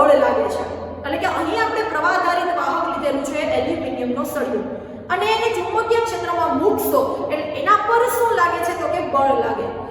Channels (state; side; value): identical; both; correlation 1.00